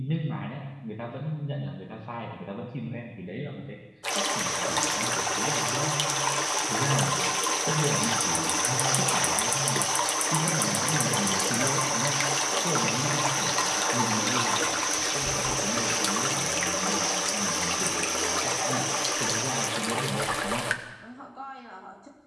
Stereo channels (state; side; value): identical; both; correlation 1.00